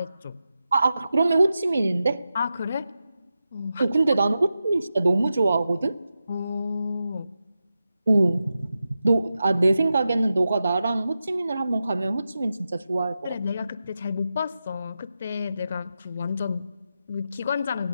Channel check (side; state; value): both; inverted; correlation -0.91